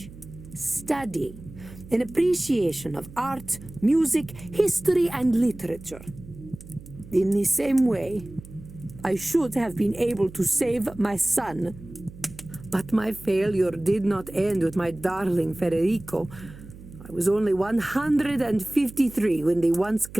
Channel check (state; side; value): noise; right; hum, 17 dB below the sound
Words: study, an appreciation of art, music, history, and literature. In the same way, I should have been able to save my son. But my failure did not end with my darling Federico. I was only 153 when the once